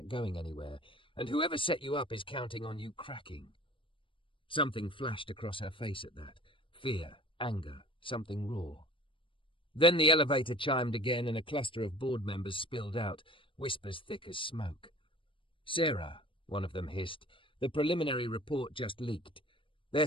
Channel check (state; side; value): late; right; 0.25 ms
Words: going anywhere, and whoever set you up is counting on you cracking." Something flashed across her face at that. Fear, anger, something raw. Then the elevator chimed again and a cluster of board members spilled out, whispers thick as smoke. "Sarah," one of them hissed, "the preliminary report just leaked. They're